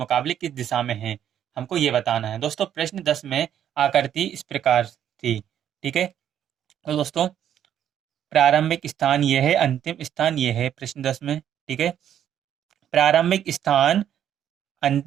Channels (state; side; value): quieter; left; 10.0 dB